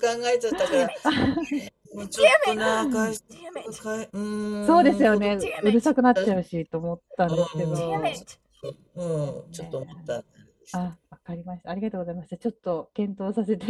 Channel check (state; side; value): identical; both; correlation 1.00